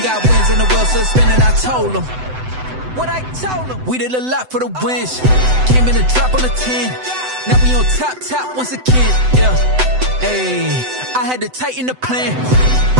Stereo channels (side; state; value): left; late; 7.9 ms